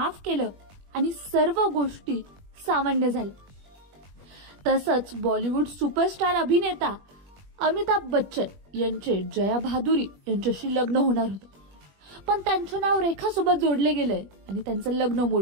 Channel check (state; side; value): late; left; 21 ms